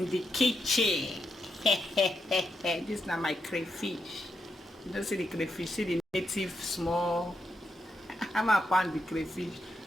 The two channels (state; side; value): normal; both; correlation 0.82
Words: the kitchen. This na my crayfish. You don't see the crayfish, see the native small. I'm a pound the crayfish.